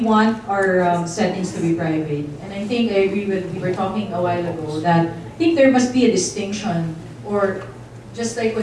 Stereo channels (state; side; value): identical; both; correlation 1.00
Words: want our settings to be private? And I think I agree with, we were talking a while ago, that I think there must be a distinction, or just like